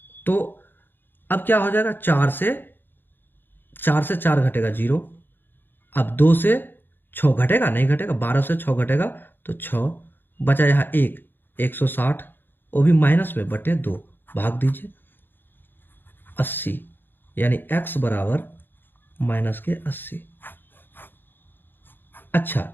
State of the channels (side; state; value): right; late; 0.096 ms